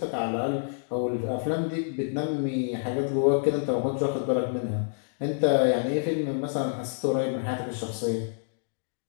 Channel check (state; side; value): silent; right; digital silence